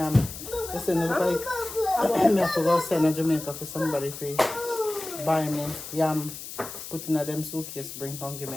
listen, look like I have to go send to Jamaica for somebody for buy me yam, put in a them suitcase, bring come give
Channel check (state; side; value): noise; left; hiss, 11 dB below the sound